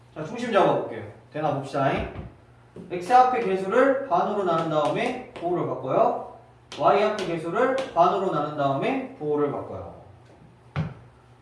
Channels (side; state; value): both; identical; correlation 1.00